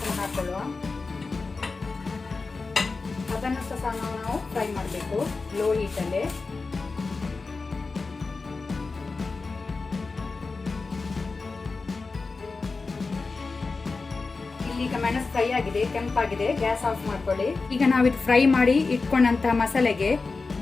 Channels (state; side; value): quieter; right; 4.1 dB